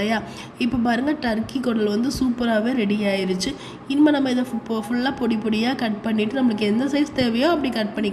இப்போ பாருங்கள், டர்க்கி குடல் வந்து சூப்பராகவே ரெடி ஆயிடுச்சு. இனிமேல் நம்ம இதை ஃபுல்லாக பொடி பொடியாக கட் பண்ணிவிட்டு நம்மளுக்கு எந்த சைஸ் தேவையோ அப்படி கட்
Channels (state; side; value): identical; both; correlation 1.00